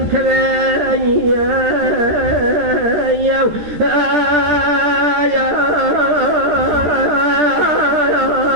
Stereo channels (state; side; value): late; left; 14 ms